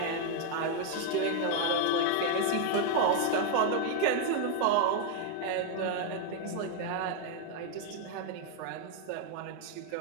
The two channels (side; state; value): both; different; correlation 0.00